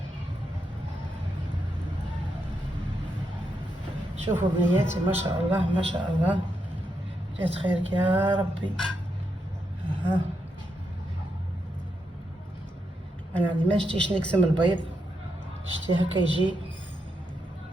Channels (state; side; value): normal; both; correlation 0.82